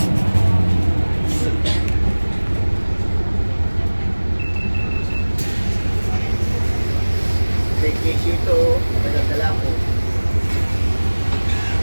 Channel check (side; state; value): both; inverted; correlation -1.00